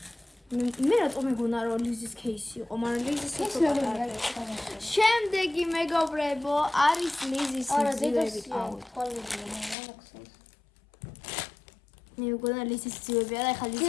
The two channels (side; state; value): right; drops out; at 9.8 s